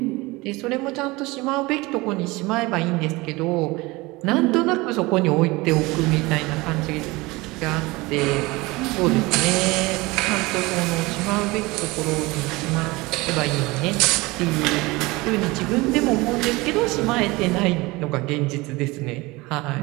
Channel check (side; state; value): left; quieter; 22.5 dB